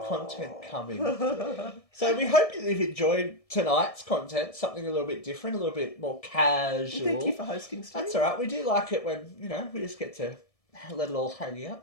coming. So we hope that you've enjoyed tonight's content, something a little bit different, a little bit more casual. Thank you for hosting, Steve. That's all right. We do like it when, we just get to let it all hang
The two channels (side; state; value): right; late; 1.7 ms